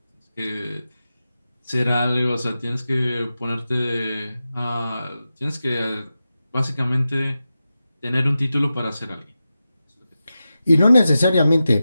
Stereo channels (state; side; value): inverted; both; correlation -0.92